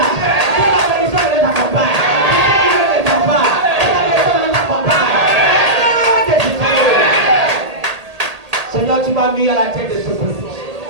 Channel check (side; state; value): left; late; 1.8 ms